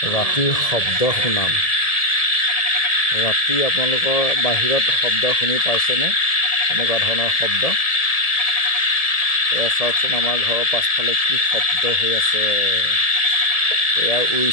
ৰাতিৰ শব্দ শুনাম। ৰাতি আপোনালোকৰ বাহিৰত শব্দ শুনি পাইছেনে? এনেকুৱা ধৰণৰ শব্দ। এয়া চাওকচোন, আমাৰ ঘৰৰ পাছফালে কি শব্দ হৈ আছে। এয়া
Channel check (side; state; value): right; late; 1.7 ms